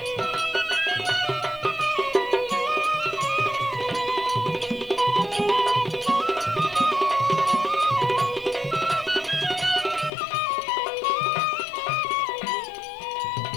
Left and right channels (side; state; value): right; drops out; at 10.1 s